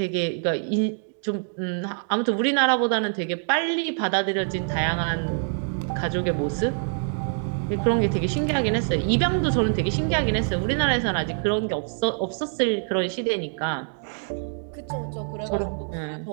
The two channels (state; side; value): silent; left; 62 dB below the other